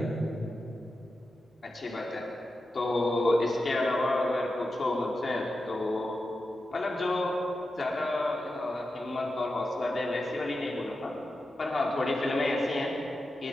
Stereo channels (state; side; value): normal; both; correlation 0.90